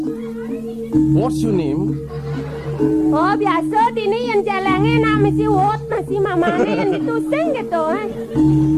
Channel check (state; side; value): identical; both; correlation 1.00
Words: What's your name? Oh, biasa dini yang celengnya nak mesti wot nasi mamane yang ditusing gitu.